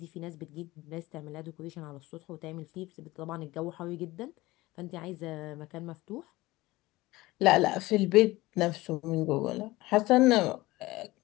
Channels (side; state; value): right; quieter; 19.4 dB